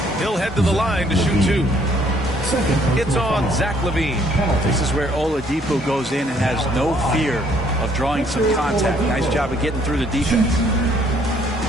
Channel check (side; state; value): both; normal; correlation 0.64